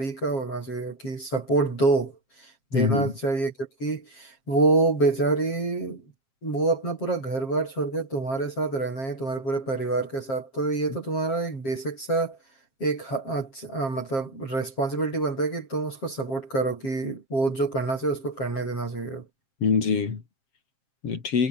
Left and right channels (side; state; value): right; late; 7.5 ms